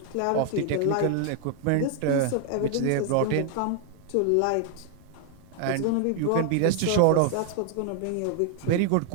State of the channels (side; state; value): both; different; correlation 0.00